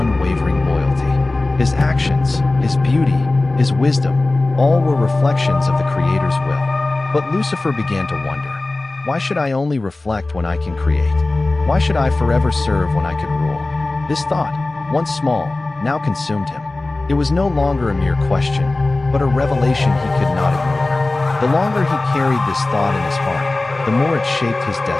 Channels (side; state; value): right; quieter; 3.0 dB